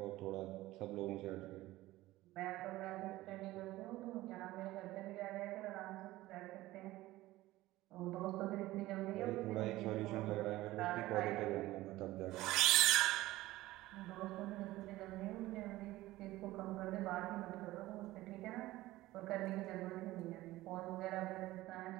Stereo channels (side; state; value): left; quieter; 17.3 dB